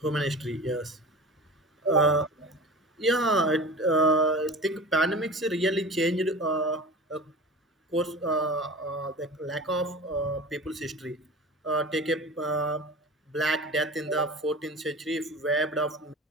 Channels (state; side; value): normal; both; correlation 0.36